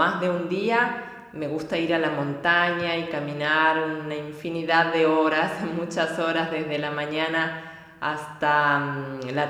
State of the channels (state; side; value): identical; both; correlation 1.00